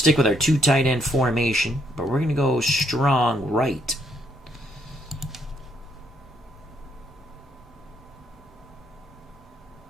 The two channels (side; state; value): both; normal; correlation 0.73